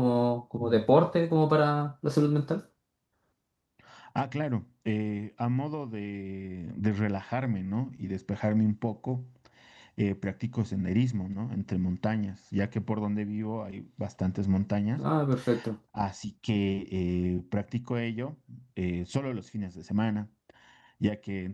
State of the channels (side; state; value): both; identical; correlation 1.00